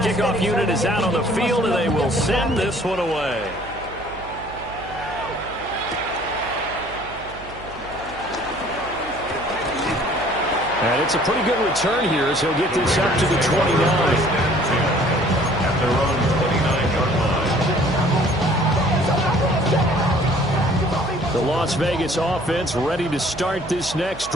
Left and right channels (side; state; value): right; noise; hum, 17 dB below the sound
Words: unit is out on the field, and they will send this one away. And it's a pretty good return here as he'll get this up to the 29. At their own 29-yard line. The Las Vegas offense ready to start this next